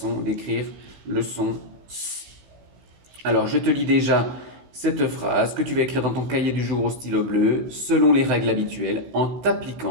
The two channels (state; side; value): late; left; 16 ms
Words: d'écrire le son S. Alors, je te lis déjà cette phrase que tu vas écrire dans ton cahier du jour au stylo bleu, selon les règles habituelles, en